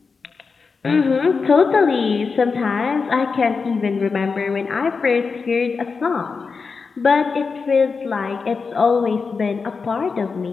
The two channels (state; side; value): quieter; right; 4.9 dB